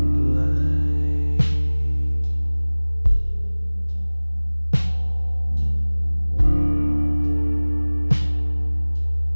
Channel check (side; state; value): both; inverted; correlation -1.00